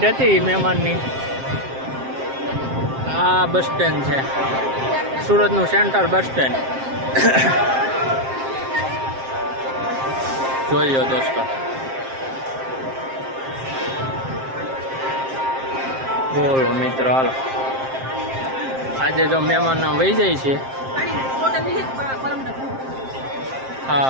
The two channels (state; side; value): late; left; 7.6 ms